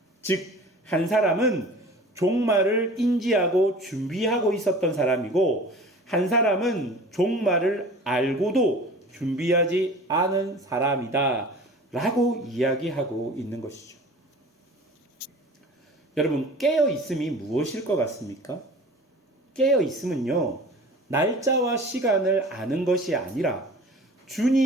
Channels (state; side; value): normal; both; correlation 0.41